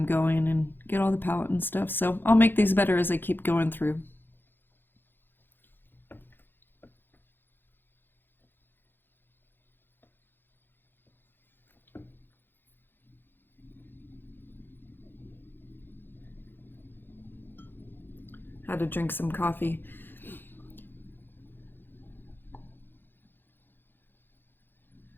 going and get all the palette and stuff. So I'll make these better as I keep going through. Had to drink some coffee.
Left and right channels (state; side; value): late; right; 0.098 ms